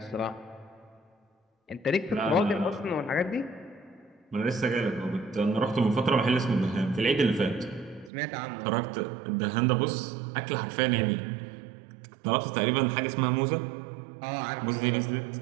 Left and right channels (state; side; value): drops out; left; at 8.1 s